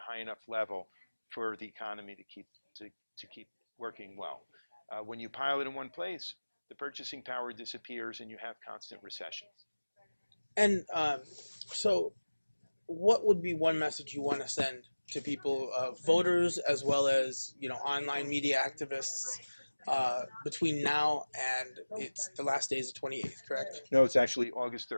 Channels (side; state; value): both; inverted; correlation -1.00